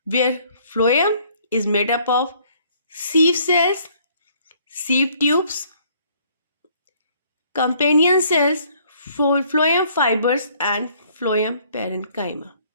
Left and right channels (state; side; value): inverted; both; correlation -0.62